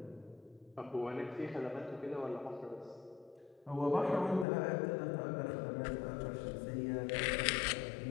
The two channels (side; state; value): right; drops out; at 4.5 s